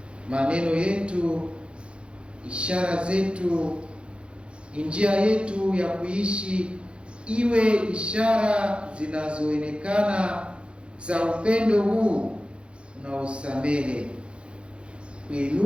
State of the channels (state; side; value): late; left; 0.057 ms